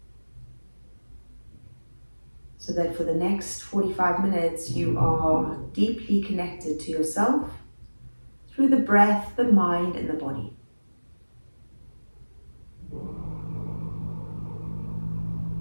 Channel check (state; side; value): inverted; both; correlation -1.00